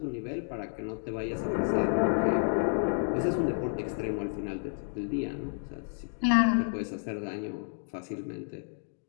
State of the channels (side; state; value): right; silent; digital silence